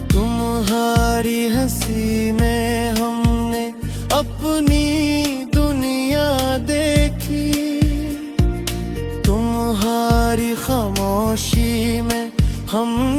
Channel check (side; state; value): both; identical; correlation 1.00